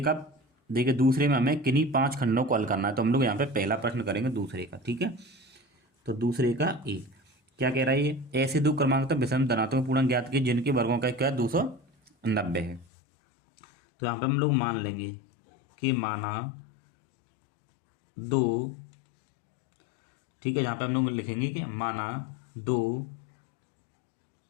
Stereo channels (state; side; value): drops out; right; at 12.9 s